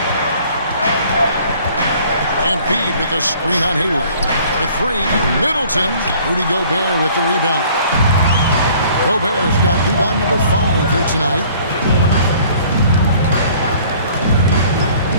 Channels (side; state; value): both; inverted; correlation -0.54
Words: Embiid with a screen on Hayward. For 3, Middleton. Rudy Gobert with the rebound. Gobert's got rebound number 5 here tonight.